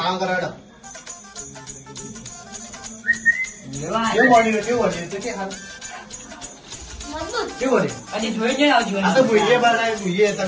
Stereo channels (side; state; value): both; identical; correlation 1.00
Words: કરો હેડો. લેવા કેવું બન્યું કેવું બન્યું તો કે હાલ મજબૂત કેવું બન્યું? અને જોઈ જઈને આવજો આ તો ભૂઈએ બનાવી ભૂઈએ